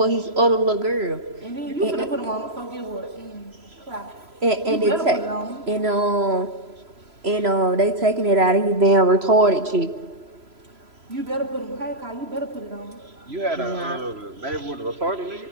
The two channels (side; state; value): left; late; 3.0 ms